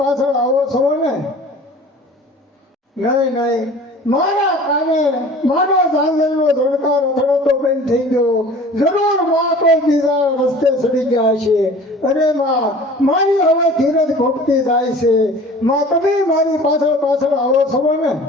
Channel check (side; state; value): both; normal; correlation 0.44